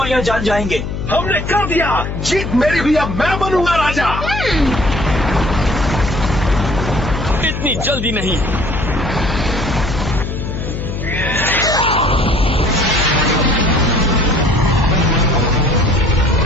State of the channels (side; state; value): left; noise; hum, 5 dB below the sound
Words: जान जाएंगे। हमने कर दिया। जीत मेरी भी, अब मैं बनूंगा राजा। इतनी जल्दी नहीं।